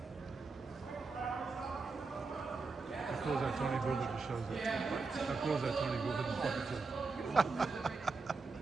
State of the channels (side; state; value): left; quieter; 4.2 dB